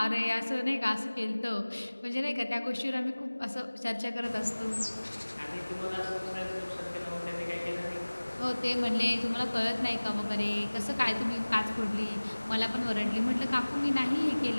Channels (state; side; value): inverted; both; correlation -1.00